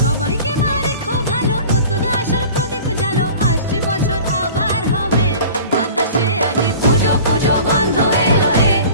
মা রেখো ভালো, নতুন আশার প্রদীপ জালো, আসছে বছর আবার হবে। বাতাসে আজি পুজো পুজো গন্ধ এলো রে,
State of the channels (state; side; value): inverted; both; correlation -0.42